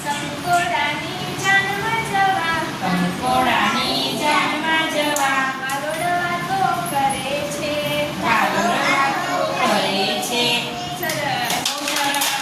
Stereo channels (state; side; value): identical; both; correlation 1.00